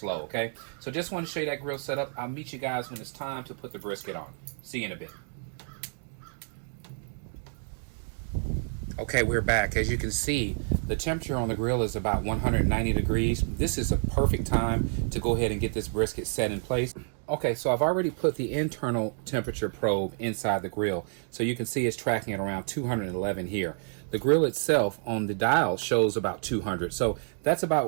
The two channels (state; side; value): silent; left; 59 dB below the other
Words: okay? So just want to show you that grill setup. I'll meet you guys when it's time to put the brisket on. See you in a bit. Okay, we're back. As you can see, the temperature on the grill is about 190 degrees. This is a perfect time to go ahead and get this brisket set in place. Okay, so I've already put the internal temperature probe inside the grill. So you can see it's tracking at around 211 here. The grill itself on the dial shows about 200. So that's